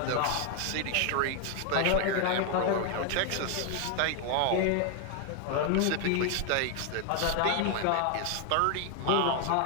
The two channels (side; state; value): both; different; correlation 0.00